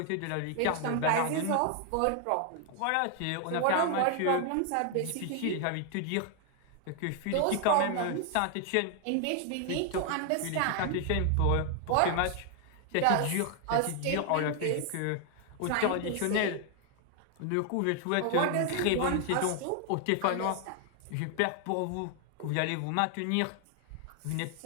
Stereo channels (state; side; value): different; both; correlation 0.00